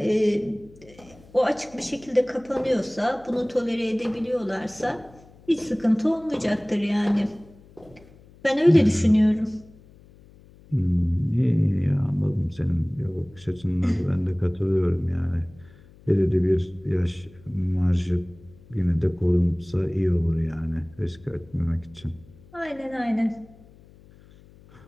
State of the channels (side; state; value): left; noise; hum, 25 dB below the sound